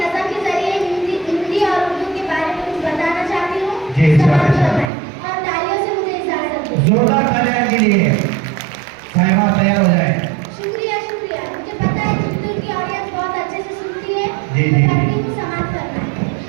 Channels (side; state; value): left; drops out; at 4.9 s